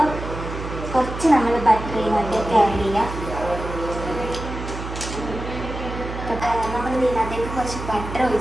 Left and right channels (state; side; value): noise; right; hum, 8 dB below the sound